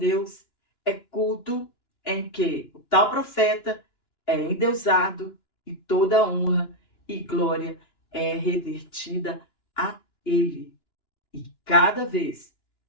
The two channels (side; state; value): right; late; 2.9 ms